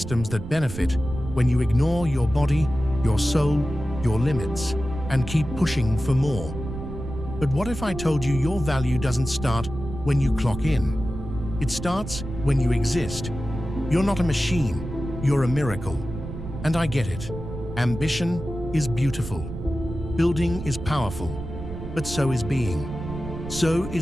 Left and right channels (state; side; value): noise; right; rumble, 9 dB below the sound